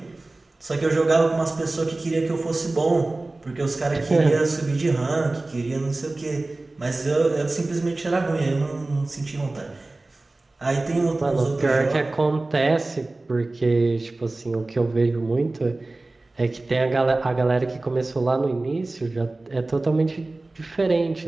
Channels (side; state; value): left; quieter; 3.0 dB